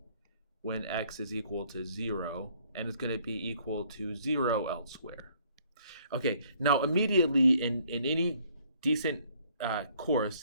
when x is equal to 0, and it's going to be equal to 0 elsewhere. Okay, now immediately in any decent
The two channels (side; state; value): both; inverted; correlation -0.63